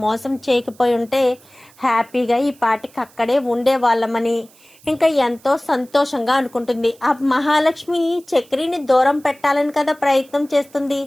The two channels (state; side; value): noise; right; hiss, 27 dB below the sound